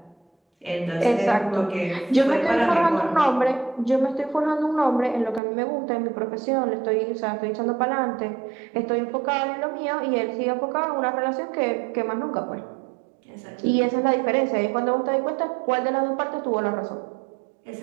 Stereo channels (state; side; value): drops out; left; at 5.4 s